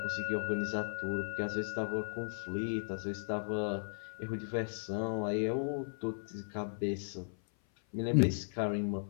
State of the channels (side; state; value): right; silent; 54 dB below the other